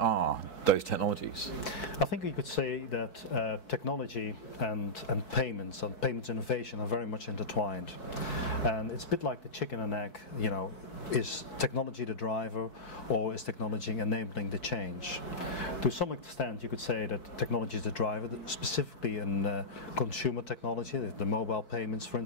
those technologies? I think you could say that technology and payments innovation are very much intertwined. And it's a bit like the chicken and egg, you know, is technology the driver or is technology enabling the change? To some extent you could say that technology is the driver, specifically in consumer technology, the mobile payments for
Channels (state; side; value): late; right; 4.6 ms